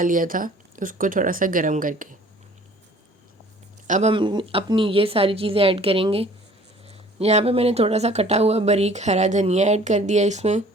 लिया था, उसको थोड़ा सा गर्म करके। अब हम अपनी ये सारी चीज़ें ऐड करेंगे। यहाँ पे मैंने थोड़ा सा कटा हुआ बारीक हरा धनिया ऐड कर दिया इसमें।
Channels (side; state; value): both; normal; correlation 0.52